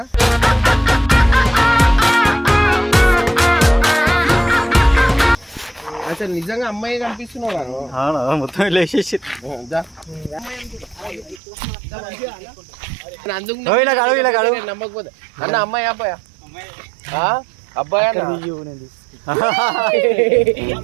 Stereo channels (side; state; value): left; drops out; at 11.4 s